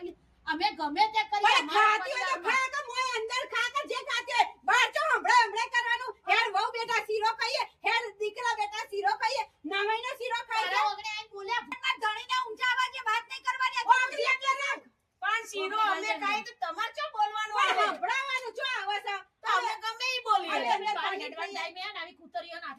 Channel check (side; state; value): both; identical; correlation 1.00